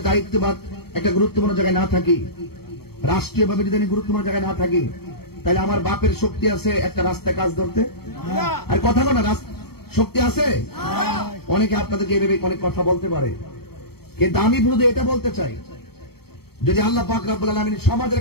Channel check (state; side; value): late; right; 0.96 ms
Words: দায়িত্ববাদ একটা গুরুত্বপূর্ণ জায়গায় না থাকি, রাষ্ট্রীয়ভাবে যদি আমি গুরুত্বপূর্ণ জায়গায় না থাকি, তাহলে আমার বাপের শক্তি আছে একটা রাস্তায় কাজ ধরতে? আর কথা বলে শক্তি আছে? অনেকে আপনাদেরকে এভাবে অনেক কথা বলতে পারে, কিন্তু আমি শুধু এটা বলতে চাই, যদি আল্লাহ পাক রব্বুল আলামিন সমাজের